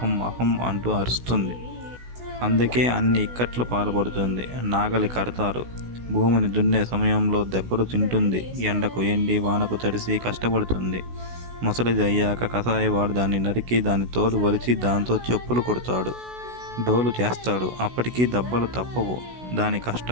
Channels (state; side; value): late; left; 16 ms